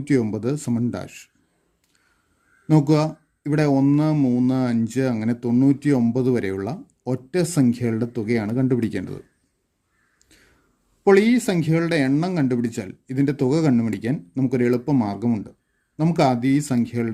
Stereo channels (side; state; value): both; identical; correlation 1.00